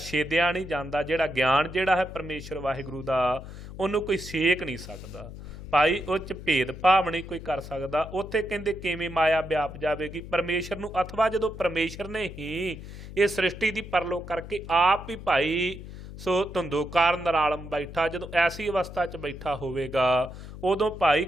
ਨਹੀਂ ਜਾਂਦਾ, ਜਿਹੜਾ ਗਿਆਨ ਜਿਹੜਾ ਹੈ ਪਰਮੇਸ਼ਰ ਵਾਹਿਗੁਰੂ ਦਾ ਉਹਨੂੰ ਕੋਈ ਸੇਕ ਨਹੀਂ ਸਕਦਾ ਭਾਈ, ਉਹ 'ਚ ਭੇਦ ਭਾਵ ਨਹੀਂ ਕੋਈ ਕਰ ਸਕਦਾ। ਉੱਥੇ ਕਹਿੰਦੇ ਕਿਵੇਂ ਮਾਇਆ ਵਿਆਪ ਜਾਵੇਗੀ ਪਰਮੇਸ਼ਰ ਨੂੰ, ਅਥਵਾ ਜਦੋਂ ਪਰਮੇਸ਼ਰ ਨੇ ਹੀ ਇਹ ਸ੍ਰਿਸ਼ਟੀ ਦੀ ਪਰਲੋ ਕਰਕੇ ਆਪ ਹੀ ਭਾਈ ਸੋ ਧੰਦੂਕਾਰ ਨਰਾਲਮ ਬੈਠਾ, ਜਦੋਂ ਐਸੀ ਅਵਸਥਾ 'ਚ ਬੈਠਾ ਹੋਵੇਗਾ ਉਦੋਂ ਭਾਈ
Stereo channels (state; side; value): noise; left; hum, 12 dB below the sound